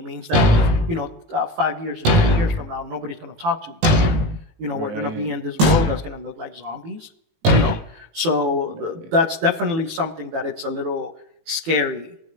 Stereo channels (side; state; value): left; late; 19 ms